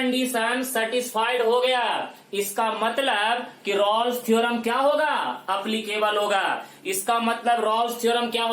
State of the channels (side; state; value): both; identical; correlation 1.00